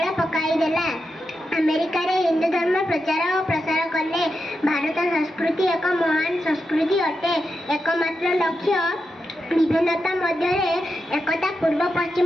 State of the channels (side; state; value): both; normal; correlation 0.87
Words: पकाई देला। अमेरिका रे हिंदू धर्म प्रचार और प्रसार कले। भारत संस्कृति एक महान संस्कृति अटे। एकमात्र लक्ष्य विभिन्नता मध्य एकता। पूर्व